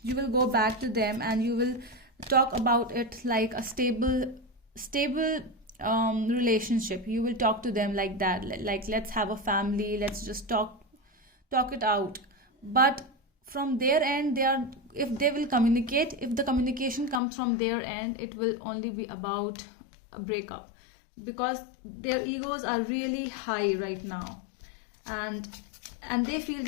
You will go back to them and you will talk about it like a stable relationship. You will talk to them like that, like let's have a family, let's just talk it out. But from their end, if they will communicate, if the communication comes from their end, it will only be about a breakup, because their egos are really high right now, and they feel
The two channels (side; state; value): right; drops out; at 17.2 s